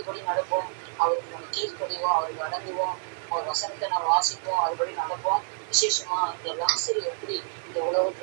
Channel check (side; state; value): left; silent; 60 dB below the other